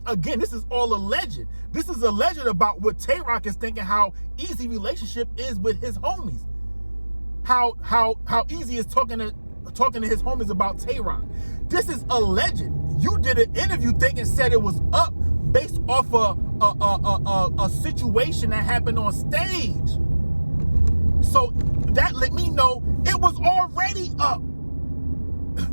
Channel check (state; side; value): inverted; both; correlation -1.00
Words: Again, this is all alleged. This is alleged about what Tay-Rock is thinking, how Eazy relationship is with his homies. How Eazy is talking to his homies about Tay-Rock. This is alleged. You did an interview thinking said it was up based off a situation that happened on stage. So that let me know it was already up.